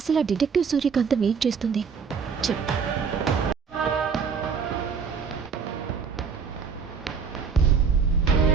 ఆ డిటెక్టివ్ సూర్యకాంతం ఏం చేస్తుంది చెప్పు.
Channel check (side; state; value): left; quieter; 5.9 dB